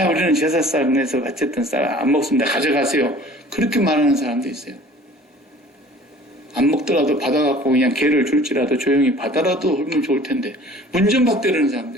우리는 제사상에서 어쨌든 안 먹습니다. 가져가세요. 그렇게 말하는 사람도 있어요. 안 먹더라도 받아갖고 그냥 개를 줄지라도 조용히 받아라도 하면 좋을 텐데 문전박대라는 사람도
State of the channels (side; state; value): both; normal; correlation 0.48